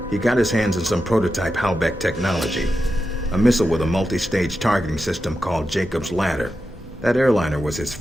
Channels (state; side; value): normal; both; correlation 0.90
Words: he got his hands on some prototype Halbeck technology. A missile with a multi-stage targeting system called Jacob's Ladder. That airliner was his